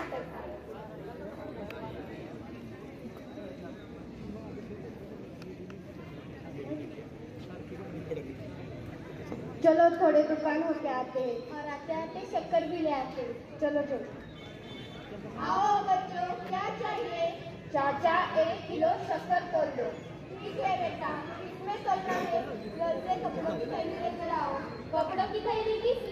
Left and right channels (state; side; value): identical; both; correlation 1.00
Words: आया। चलो थोड़े दुकान होके आते हैं और आते आते शक्कर भी ले आते हैं। चलो चलो आओ बच्चों, क्या चाहिए? चाचा 1 किलो शक्कर तोल दो। ठीक है बेटा, इसमें तोलना है। घर से कपड़ों की थैली लेकर आओ। कपड़ों की थैली किस